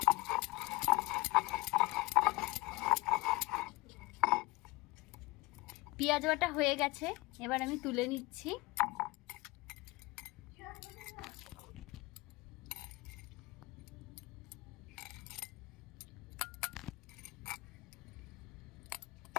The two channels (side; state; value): right; quieter; 22.9 dB